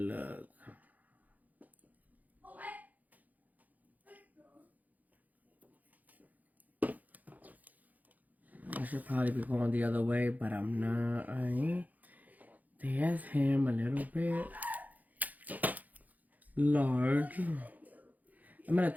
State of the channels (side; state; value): left; late; 0.080 ms